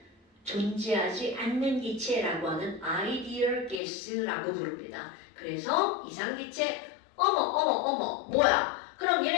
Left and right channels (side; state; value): right; drops out; at 3.8 s